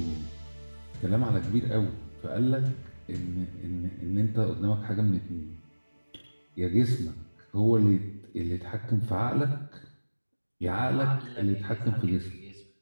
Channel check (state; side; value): inverted; both; correlation -1.00